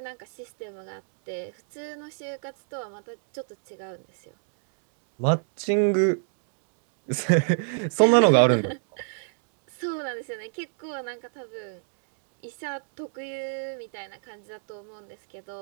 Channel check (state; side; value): silent; left; digital silence